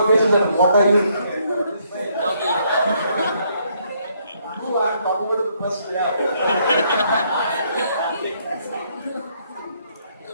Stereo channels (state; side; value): inverted; both; correlation -0.70